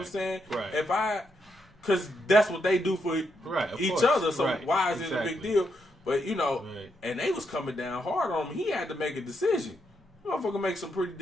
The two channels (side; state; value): both; normal; correlation 0.80